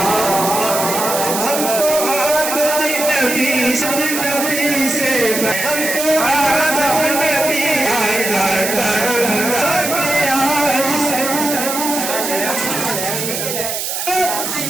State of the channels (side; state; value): right; noise; hiss, 3 dB below the sound